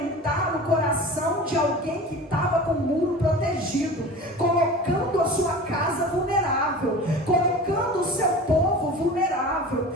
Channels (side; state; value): both; normal; correlation 0.36